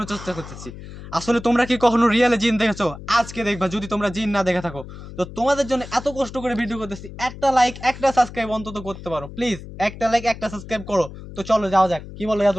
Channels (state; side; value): noise; left; hum, 13 dB below the sound